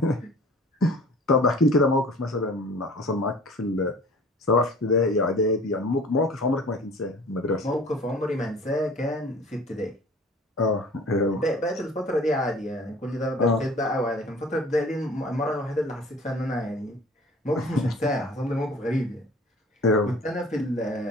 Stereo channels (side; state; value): both; normal; correlation 0.46